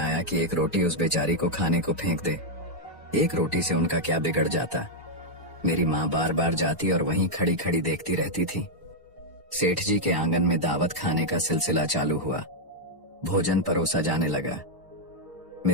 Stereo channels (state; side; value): normal; both; correlation -0.02